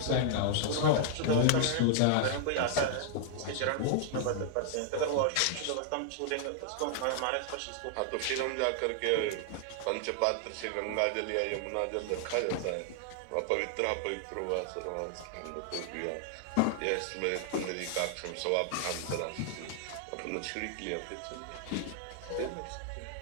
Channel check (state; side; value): different; both; correlation 0.00